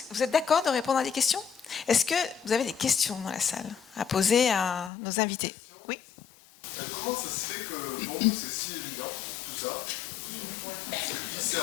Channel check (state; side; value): drops out; right; at 4.9 s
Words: que vous êtes d'accord de répondre à des questions? Est-ce que vous avez des questions dans la salle à poser à nos invités? Oui. Comment ça se fait que pour nous c'est si évident, tout ça?